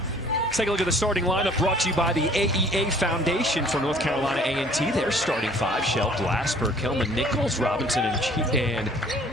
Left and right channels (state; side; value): normal; both; correlation 0.55